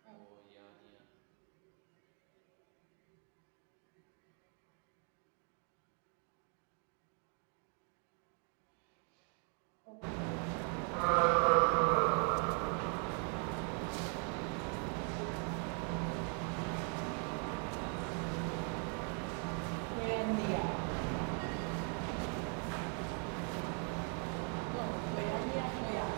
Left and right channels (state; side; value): quieter; left; 38.8 dB